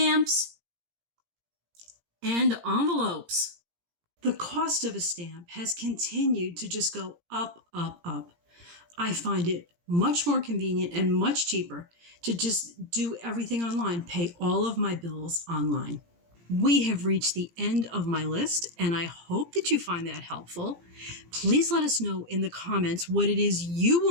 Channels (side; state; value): left; late; 17 ms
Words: and envelopes. The cost of a stamp has continued to just go up, up, up. I find it much more convenient and much cheaper to just do everything online, pay all of my bills online. We have reached the end of my list, and I hope that you find that helpful. Please let us know in the comments what it is you